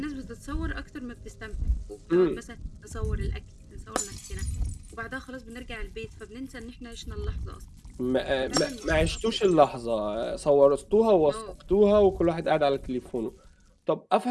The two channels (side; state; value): both; identical; correlation 1.00